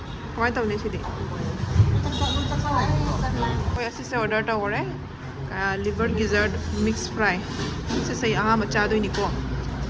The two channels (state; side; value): identical; both; correlation 1.00